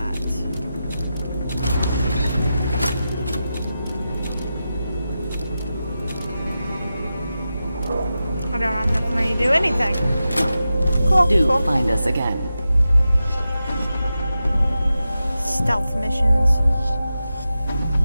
I don't have enough money to do anything. Cool. Do find us again. Stealth missions.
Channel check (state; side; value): inverted; both; correlation -0.91